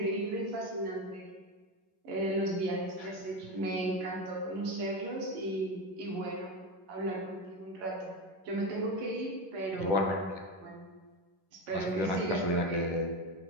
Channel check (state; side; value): late; left; 11 ms